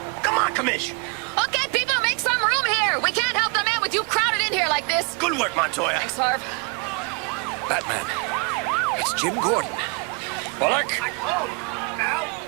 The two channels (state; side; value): quieter; left; 30.8 dB